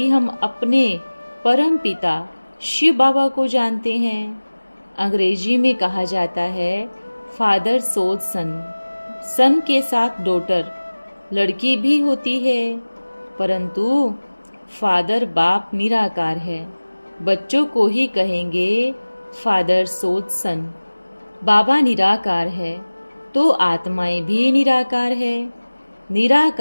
हम अपने परम पिता शिव बाबा को जानते हैं। अंग्रेजी में कहा जाता है फादर सोज सन। सन के साथ डॉटर लड़की भी होती है, परंतु फादर बाप निराकार है। बच्चों को ही कहेंगे फादर सोज सन। बाबा निराकार है तो आत्माएं भी निराकार है।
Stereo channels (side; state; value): both; inverted; correlation -1.00